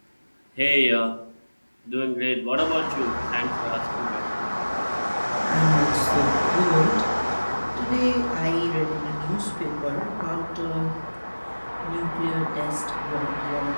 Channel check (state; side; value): inverted; both; correlation -1.00